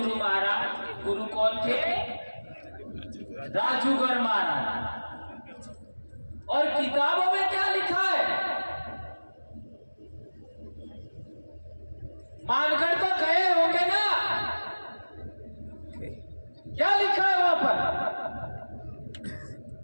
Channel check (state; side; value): inverted; both; correlation -1.00